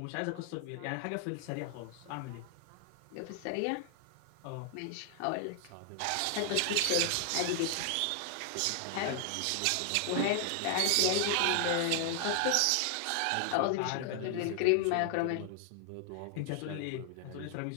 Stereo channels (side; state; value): both; different; correlation 0.00